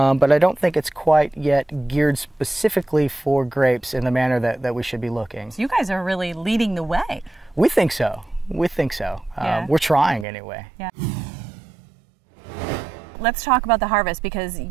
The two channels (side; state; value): left; drops out; at 10.2 s